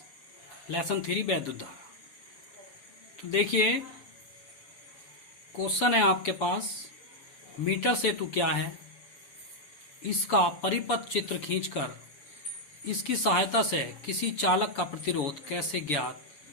लेसन 3 वैद्युत धारा। तो देखिए क्वेश्चन है आपके पास, मीटर सेतु क्या है, इसका परिपथ चित्र खींचकर इसकी सहायता से किसी चालक का प्रतिरोध कैसे ज्ञात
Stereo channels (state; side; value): late; right; 6.9 ms